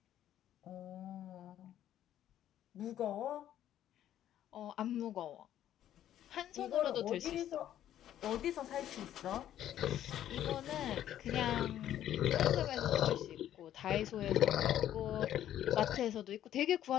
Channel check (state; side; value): quieter; right; 11.6 dB